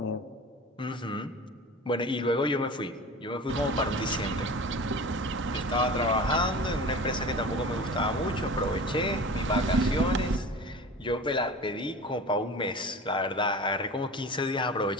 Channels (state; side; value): normal; both; correlation 0.36